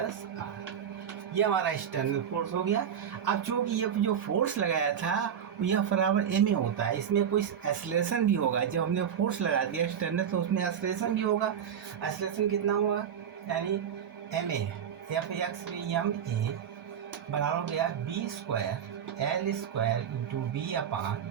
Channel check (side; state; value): left; quieter; 8.5 dB